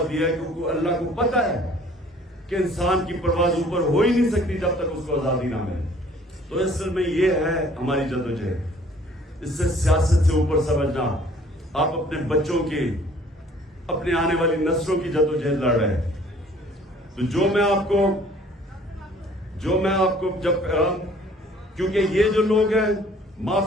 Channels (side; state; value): both; normal; correlation 0.55